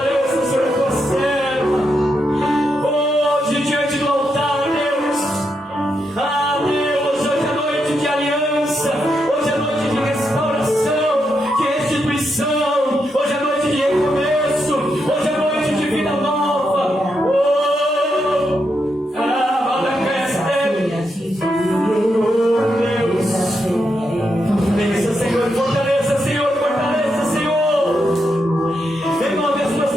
Senhor, a tua serva. Hoje, diante do altar, Deus, Deus, hoje é noite de aliança, hoje é noite de restauração, de restituição, hoje é noite de recomeço, hoje é noite de vida nova. Bença, Senhor, fortaleça, Senhor, fortaleça, Senhor. Renove as tuas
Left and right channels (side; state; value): both; normal; correlation 0.82